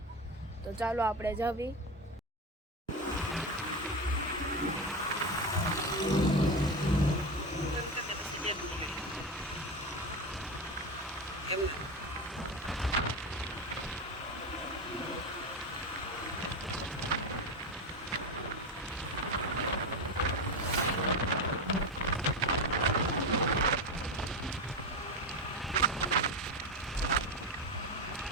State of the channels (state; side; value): normal; both; correlation 0.17